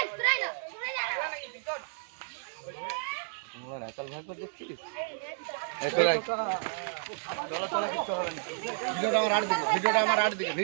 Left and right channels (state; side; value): silent; left; 55 dB below the other